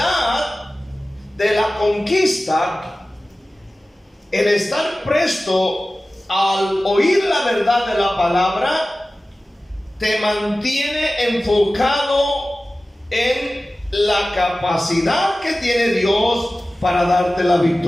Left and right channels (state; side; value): normal; both; correlation 0.96